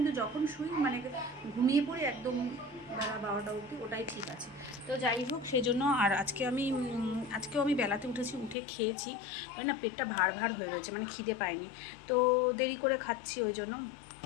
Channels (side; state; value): right; drops out; at 8.6 s